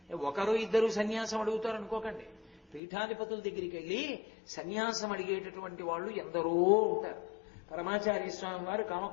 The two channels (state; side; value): drops out; right; at 2.8 s